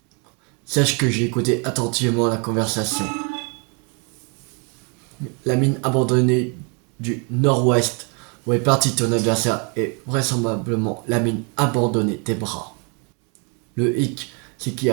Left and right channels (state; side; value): quieter; left; 35.6 dB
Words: Sache que j'ai écouté attentivement la conversation. La mine abandonnée du nord-ouest où est parti ton adversaire est vraisemblablement la mine abandonnée des bras. Le hic, c'est qu'il